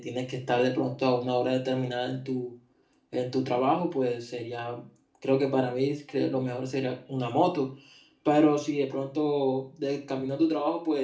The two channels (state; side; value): identical; both; correlation 1.00